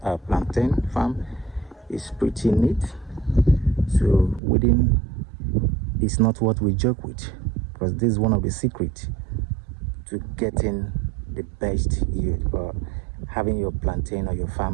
our plantain farm is pretty neat. So weeding is not what we joke with, because this is one of the secrets to getting the best yield, or having your plantain or your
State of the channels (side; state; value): left; drops out; at 4.4 s